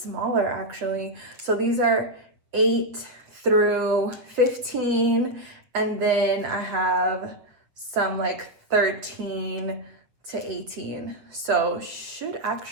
actually. So these are 8 through 15, and then I have some like 13 to 18. So should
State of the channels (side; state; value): left; late; 7.6 ms